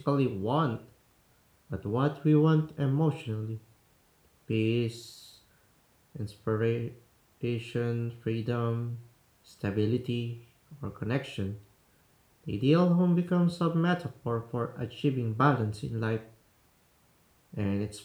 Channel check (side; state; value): both; identical; correlation 1.00